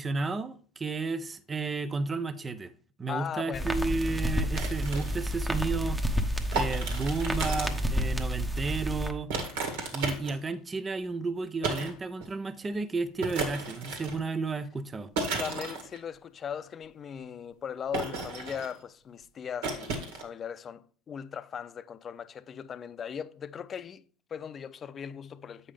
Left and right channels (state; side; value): normal; both; correlation 0.70